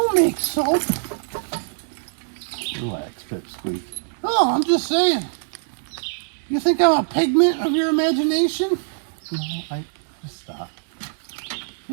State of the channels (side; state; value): left; silent; 63 dB below the other